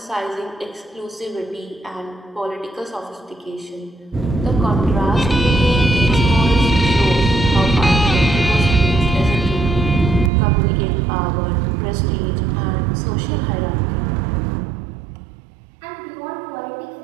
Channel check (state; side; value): drops out; left; at 10.3 s